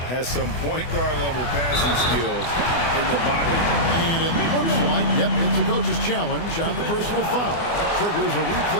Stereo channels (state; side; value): late; right; 24 ms